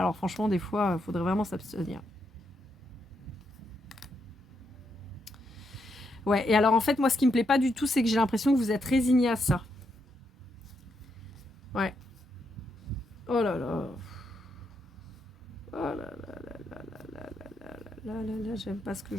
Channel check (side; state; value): both; normal; correlation 0.80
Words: franchement des fois il faudrait vraiment s'abstenir. Ouais, et alors en fait moi ce qui me plaît pas du tout c'est que j'ai l'impression que vous êtes résigné à ça. Ouais. Oh là là. Oh là là là là là là là là là là, j'aime pas ce que